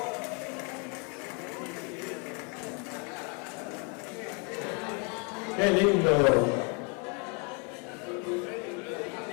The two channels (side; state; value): right; quieter; 35.1 dB